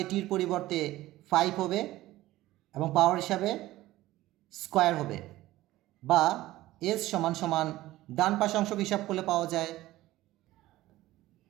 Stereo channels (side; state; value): left; quieter; 16.5 dB